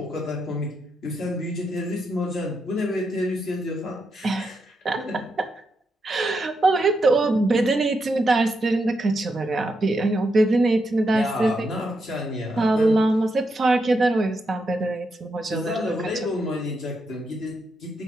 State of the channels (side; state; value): both; normal; correlation 0.83